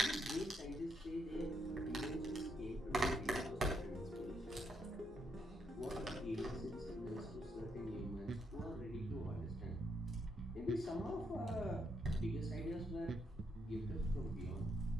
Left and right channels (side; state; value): both; normal; correlation 0.77